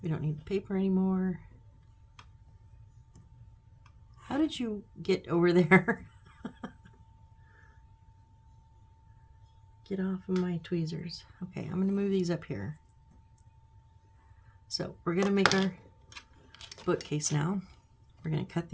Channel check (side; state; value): both; identical; correlation 1.00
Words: We don't need the paper anymore. How did you get over there? Get off of my tweezers. Okay, I'm going to move these up here. So we're going to make our bookcase now. We're going to cut